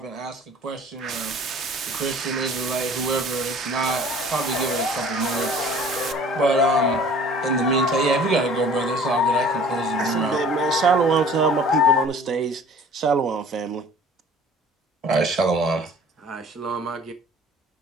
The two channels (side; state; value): both; normal; correlation 0.48